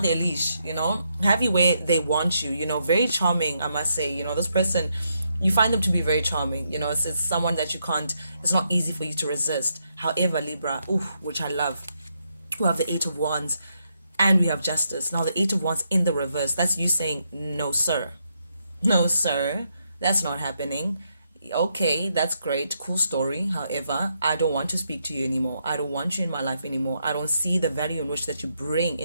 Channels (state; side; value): inverted; both; correlation -0.79